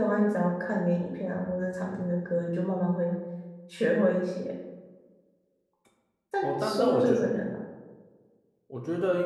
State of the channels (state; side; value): identical; both; correlation 1.00